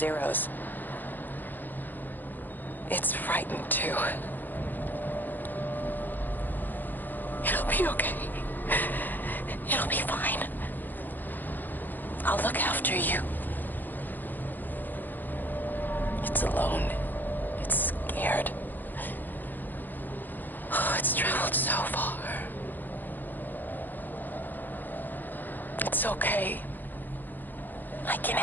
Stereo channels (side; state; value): right; late; 0.087 ms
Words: It's frightened, too. It'll be okay. It'll be fine. I'll look after you. It's alone. It's scared. Oh, it's traveled so far. It's okay. I can